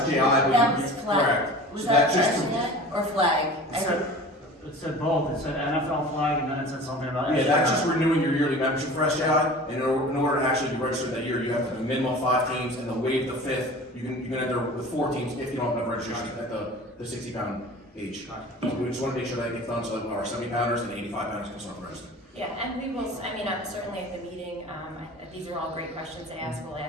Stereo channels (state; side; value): normal; both; correlation 0.39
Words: SJI, I believe. That was flag. Correct. Was So that just internet or flag? It said both, it said NFL flag, and then it said something about. Yeah, that's just renewing your yearly membership for SJI, and in order to actually be registered that year, you have to have a minimum of 5 teams, and they'll waive the 5th, you can enter with 4 teams if you don't have enough registration at the 60 pound age. So we just wanna make sure that gets done, so that our 70 pounders and 85 pounders can start registering. Yeah, and we will, certainly at the meeting, these are all great questions to ask, we'll